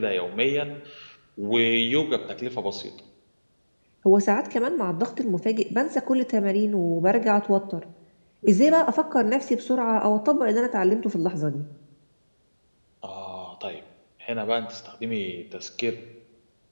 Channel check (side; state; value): both; inverted; correlation -1.00